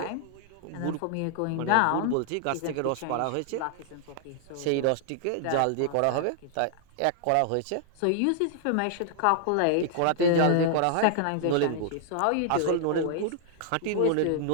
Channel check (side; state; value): both; different; correlation -0.01